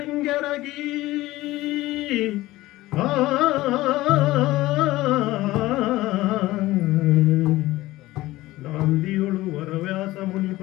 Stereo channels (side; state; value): right; quieter; 17.6 dB